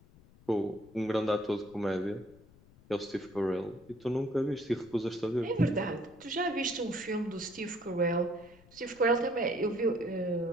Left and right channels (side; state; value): left; noise; rumble, 25 dB below the sound